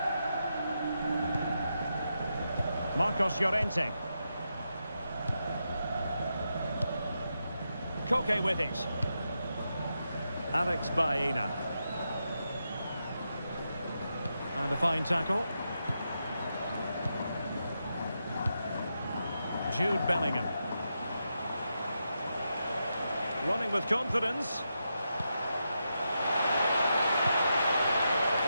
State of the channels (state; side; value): inverted; both; correlation -0.85